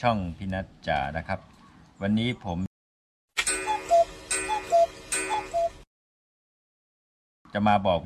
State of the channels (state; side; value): identical; both; correlation 1.00